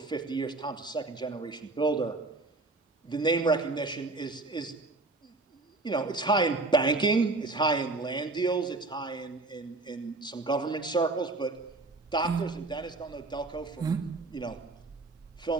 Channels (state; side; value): quieter; left; 3.3 dB